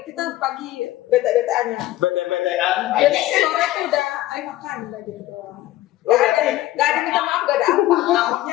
kita pagi bete-beteannya, Beda-bedaan. jadi sore itu udah ayo makan udah gitu doang. Gak ada minta maaf, gak ada apa.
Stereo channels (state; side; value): quieter; right; 15.4 dB